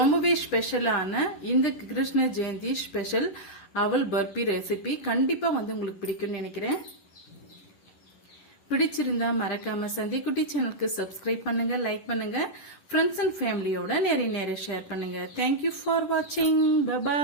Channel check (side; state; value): right; late; 11 ms